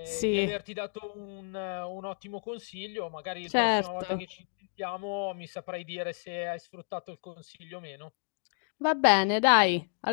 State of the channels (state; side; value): silent; right; digital silence